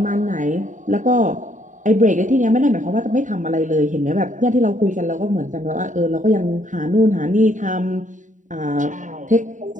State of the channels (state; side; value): late; left; 0.36 ms